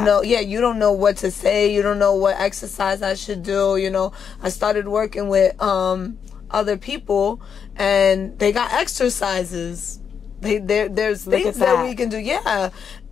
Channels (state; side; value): quieter; right; 7.1 dB